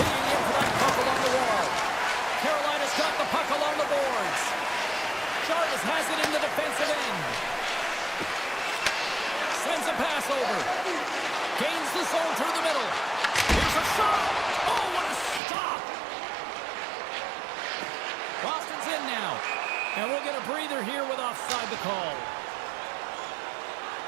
in for that puck along the wall. Carolina's got the puck along the boards. Jarvis has it in the defensive end. Sends a pass over. Gains the zone through the middle. Here's a shot. Oh, what a stop. Boston's in now. And we'll get a breather here with offside the call.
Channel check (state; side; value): drops out; left; at 15.4 s